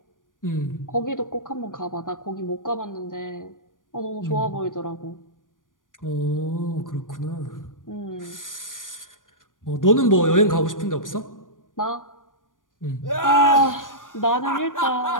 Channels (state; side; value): late; right; 0.89 ms